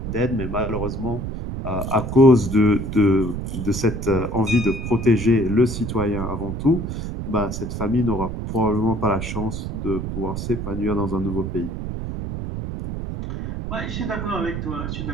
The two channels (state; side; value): noise; right; rumble, 5 dB below the sound